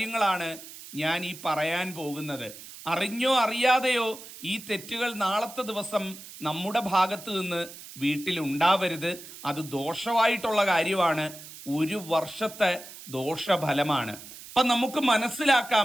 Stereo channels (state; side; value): noise; right; hiss, 15 dB below the sound